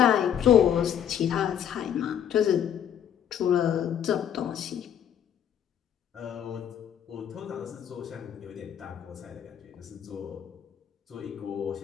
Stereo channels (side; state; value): right; quieter; 9.3 dB